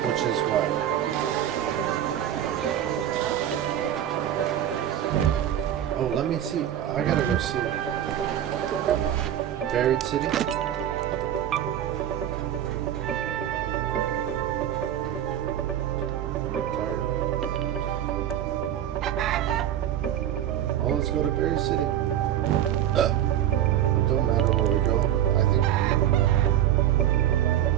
which is what? Oh, let me see. I gotta go see it. Buried City. Oh, let's go to Buried City. Don't matter where we go. I think.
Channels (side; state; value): left; quieter; 11.1 dB